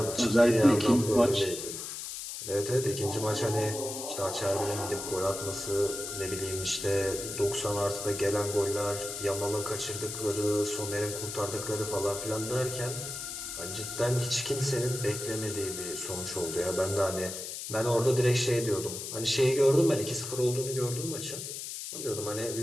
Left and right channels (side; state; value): left; noise; hiss, 7 dB below the sound